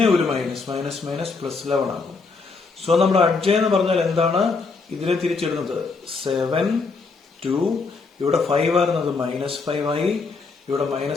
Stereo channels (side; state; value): right; quieter; 4.4 dB